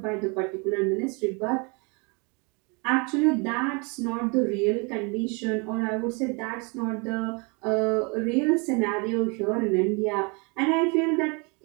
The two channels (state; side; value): quieter; left; 31.7 dB